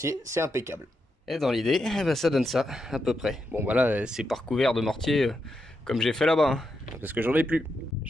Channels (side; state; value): both; normal; correlation 0.84